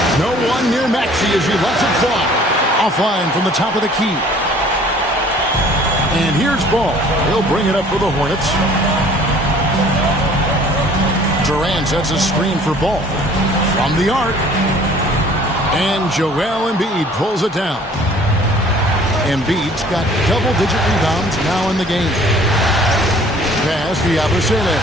No one near Maxey as he lets it fly. Offline from the top of the key. And here's Ball. He'll bring it up for the Hornets. Durant sets a screen for Ball. From the arc. And Joel Embiid pulls it down. Embiid's got double-digit rebounds now in the game. Pass to Yabusele.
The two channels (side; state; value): both; normal; correlation 0.53